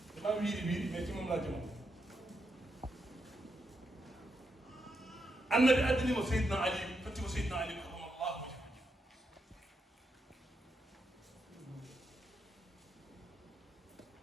mam wiiɗi mais timum lajji mum annabi addinimo Seydina Ali tottimo Seydina Ali karamallahu wajhahu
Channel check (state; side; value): normal; both; correlation 0.82